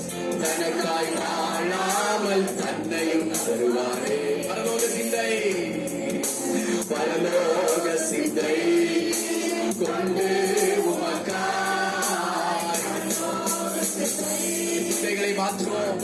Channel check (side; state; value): both; identical; correlation 1.00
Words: தனக்காய் வாழாமல் தன்னையும் தருவாரே. பரலோக சிந்தை, பரலோக சிந்தை கொண்டு உமக்காய் சிந்தைகளை மாற்றுவோம்.